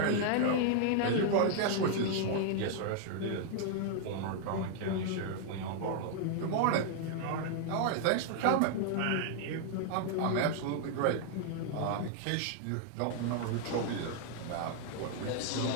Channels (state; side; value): different; both; correlation 0.00